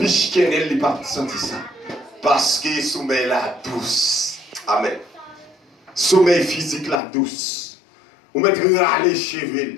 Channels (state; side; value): drops out; right; at 7.0 s